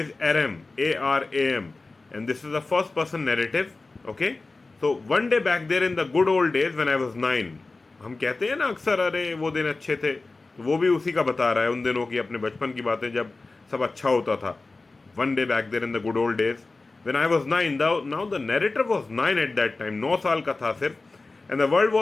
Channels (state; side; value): quieter; right; 3.5 dB